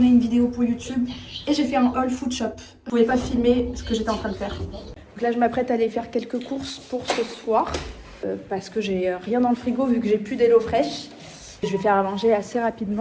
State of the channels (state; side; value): identical; both; correlation 1.00